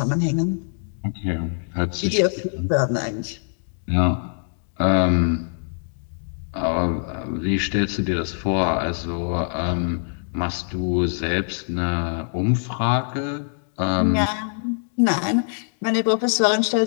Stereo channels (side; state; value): right; silent; digital silence